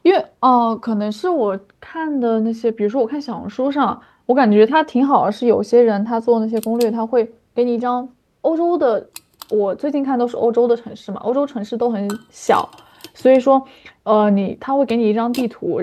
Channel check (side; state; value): both; identical; correlation 1.00